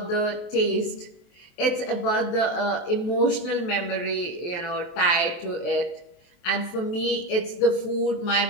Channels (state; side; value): late; right; 23 ms